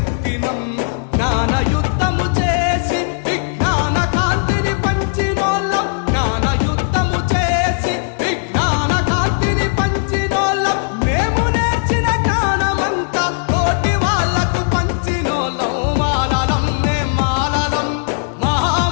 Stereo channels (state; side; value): silent; right; digital silence